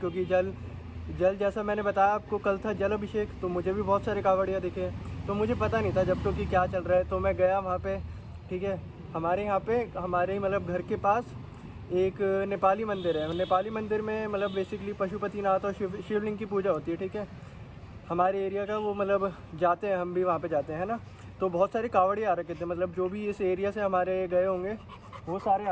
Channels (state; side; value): identical; both; correlation 1.00